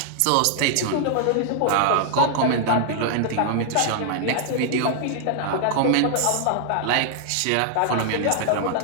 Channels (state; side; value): different; both; correlation 0.00